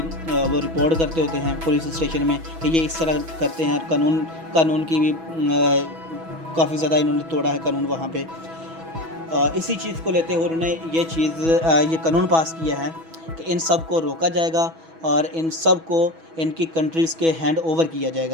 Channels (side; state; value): left; late; 6.1 ms